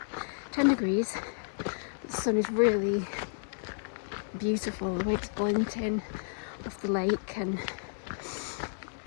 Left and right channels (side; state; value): right; silent; 57 dB below the other